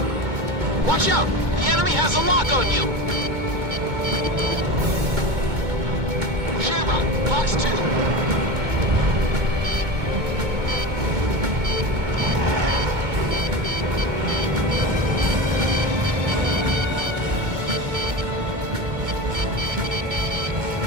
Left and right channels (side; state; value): left; late; 2.2 ms